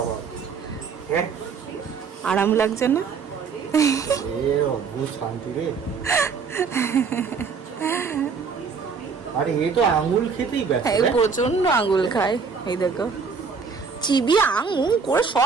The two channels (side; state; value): left; quieter; 5.5 dB